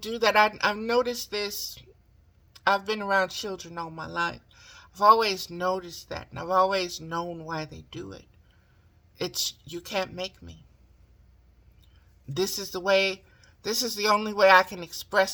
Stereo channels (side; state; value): both; identical; correlation 1.00